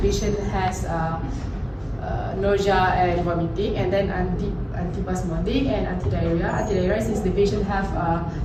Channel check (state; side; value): identical; both; correlation 1.00